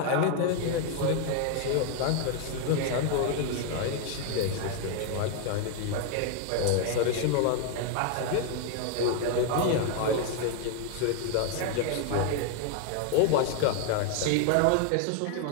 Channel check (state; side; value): different; both; correlation 0.00